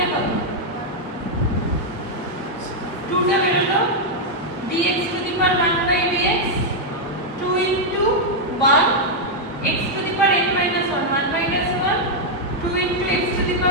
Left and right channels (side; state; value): both; normal; correlation -0.02